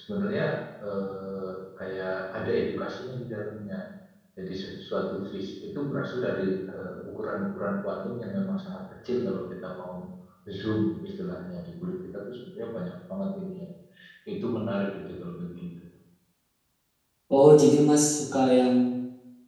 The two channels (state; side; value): identical; both; correlation 1.00